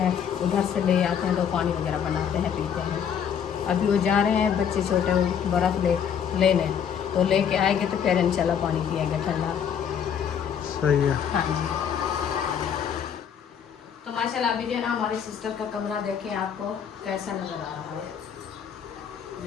उधर से ले आते हैं, तो पानी वगैरह बनाते हैं, पीते हैं। अभी वो जा रहे हैं बच्चे छोटे, वो बर्फ़ लेने, तो लेके आएंगे तो फिर इंशाल्लाह पानी पिएंगे ठंडा। सही है। हाँ जी, तो माशाल्लाह अभी जो है ना हमारी सिस्टर का कमरा देखें आपको कैसा नज़र आ रहा है।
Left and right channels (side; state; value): right; quieter; 8.1 dB